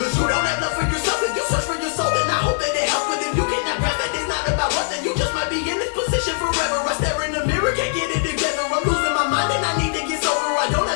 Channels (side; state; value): right; silent; digital silence